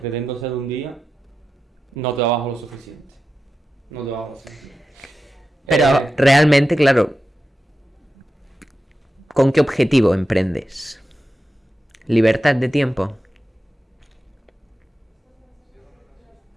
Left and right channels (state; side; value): normal; both; correlation 0.91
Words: ser un día, no trabajo lo suficiente. No trabajo lo suficiente. Pero realmente, claro, ¿con qué objetivo emprendes? ¿Libertad de tiempo?